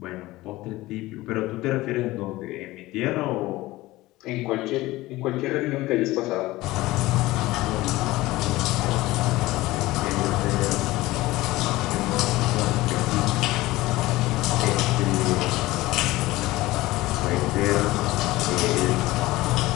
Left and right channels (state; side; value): quieter; right; 18.6 dB